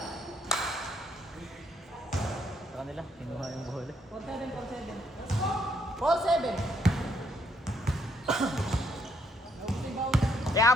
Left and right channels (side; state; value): both; normal; correlation 0.71